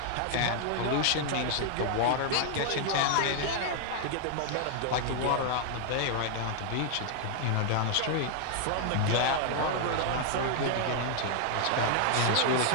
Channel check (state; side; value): different; both; correlation 0.00